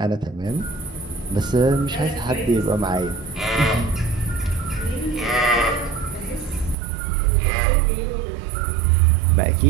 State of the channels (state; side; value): drops out; left; at 6.8 s